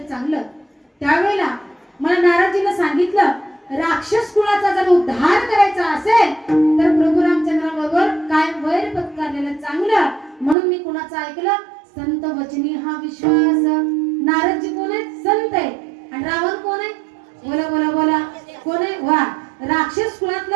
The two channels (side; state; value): left; drops out; at 10.6 s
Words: चांगलं त्यावेळेला मला नारदजीने सांगितलं राक्षस कुळाचा जर उद्धार करायचा असेल तर प्रभू रामचंद्रांबरोबर काय वैर पत्करलेलं चांगलं म्हणून मी कुणाचं ऐकलं संत वचनी हा विश्वास नारदजी कोण आहेत संत आहेत आणि रावण कोण आहे बोला बोला बोला कोण आहे वा राक्षस